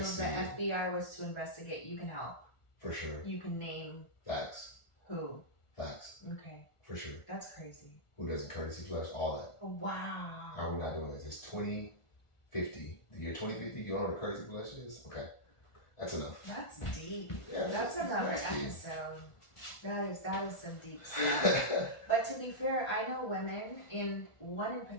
if the FBI was to investigate, you can help. For sure. You can name. Facts. Who? Facts. Okay. For sure. That's crazy. Who doesn't courtesy flush? All that. Wow. How are we not doing this? It's 2050. The year 2050, you don't know what a courtesy flush is? Okay. That's enough. That's deep. Yeah, that's another episode. That is some deep stuff. But to be fair, I know women, one in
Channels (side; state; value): right; late; 1.4 ms